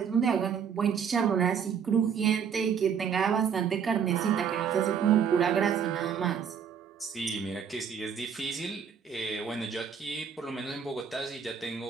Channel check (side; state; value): left; quieter; 7.3 dB